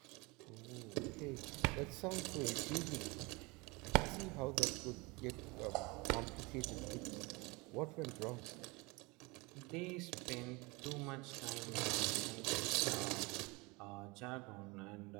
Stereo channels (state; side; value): quieter; left; 25.7 dB